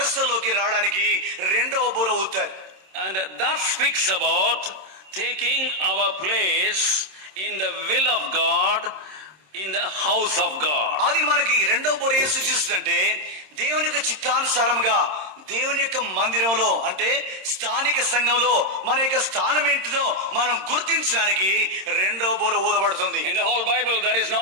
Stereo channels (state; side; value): late; left; 26 ms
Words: రావడానికి రెండవ బూర ఊతారు. And that speaks about taking our place in the will of God, in the house of God. అది మనకి రెండవ బూర ఏం సూచిస్తుందంటే, దేవుని యొక్క చిత్తానుసారంగా దేవుని యొక్క మందిరంలో, అంటే స్థానిక సంఘంలో మన యొక్క స్థానం ఏంటిదో మనం గుర్తించడానికి రెండవ బూర ఊదబడుతుంది. In the whole Bible there is no